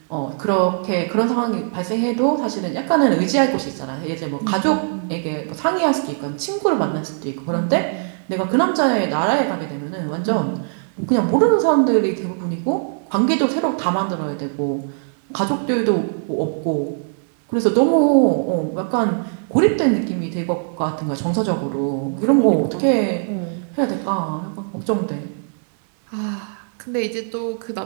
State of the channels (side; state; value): left; silent; digital silence